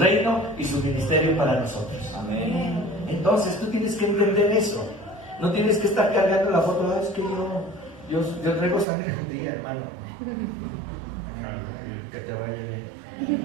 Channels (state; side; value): drops out; left; at 8.8 s